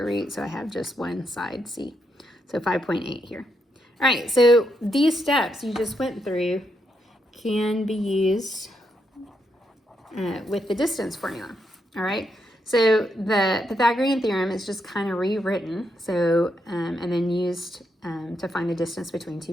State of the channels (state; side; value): normal; both; correlation 0.80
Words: root, so I have just one side c. So 5.8 here. All right, so these steps you just went through can be used with the distance formula. All right, so the Pythagorean theorem is just kind of rewritten, so and then used to find the distance between